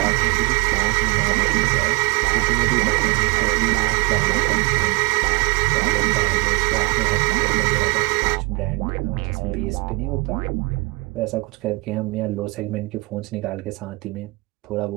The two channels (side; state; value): left; quieter; 25.2 dB